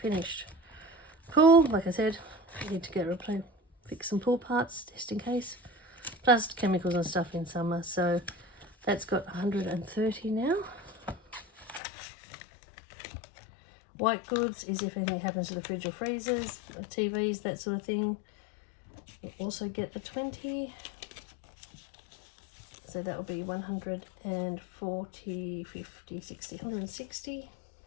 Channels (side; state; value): right; drops out; at 11.8 s